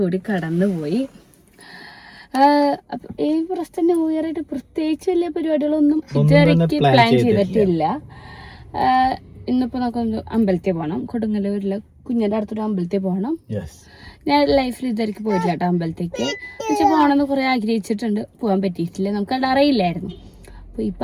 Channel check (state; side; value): identical; both; correlation 1.00